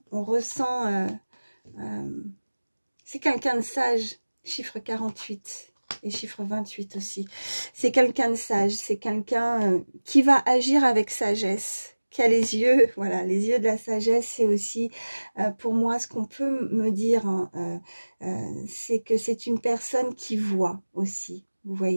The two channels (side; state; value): both; inverted; correlation -1.00